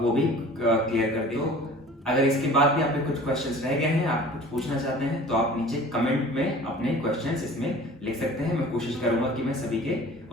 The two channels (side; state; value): both; normal; correlation 0.45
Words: वो भी क्लियर कर दिए हो। अगर इसके बाद भी आपके कुछ क्वेश्चंस रह गए हैं, आप कुछ पूछना चाहते हैं, तो आप नीचे कमेंट में अपने क्वेश्चंस इसमें लिख सकते हैं। मैं कोशिश करूंगा कि मैं सभी के